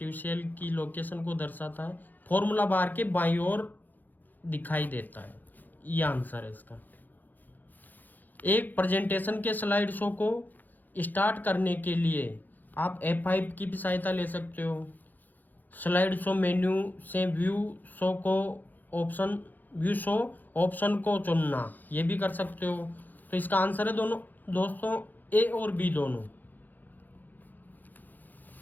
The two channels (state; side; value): late; right; 0.085 ms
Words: सेल की लोकेशन को दर्शाता है, फॉर्मूला बार के बाईं ओर दिखाई देता है। ये आंसर है इसका। एक प्रेजेंटेशन के स्लाइड शो को स्टार्ट करने के लिए आप F5 की भी सहायता ले सकते हो। स्लाइड शो मेन्यू से व्यू शो ऑप्शन को चुनना, ये भी कर सकते हो। तो इसका आंसर है दोनों दोस्तों ए और बी दोनों।